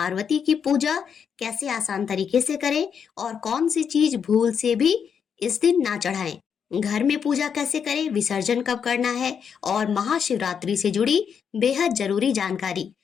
की पूजा कैसे आसान तरीके से करें और कौन सी चीज भूल से भी इस दिन ना चढ़ाएं। घर में पूजा कैसे करें, विसर्जन कब करना है और महाशिवरात्रि से जुड़ी बेहद जरूरी जानकारी।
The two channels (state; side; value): quieter; right; 7.2 dB